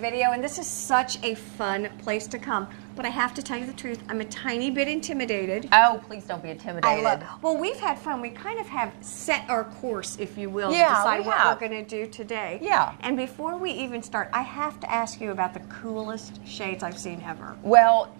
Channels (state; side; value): silent; left; digital silence